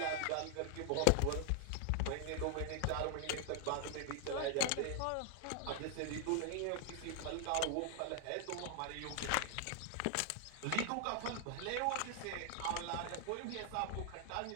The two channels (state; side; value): different; both; correlation 0.00